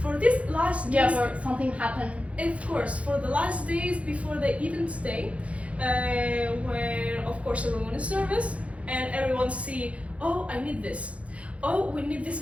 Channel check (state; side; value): late; left; 0.064 ms